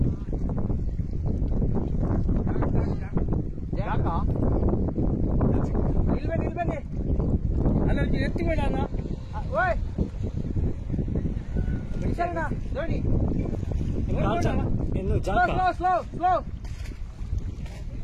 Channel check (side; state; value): both; identical; correlation 1.00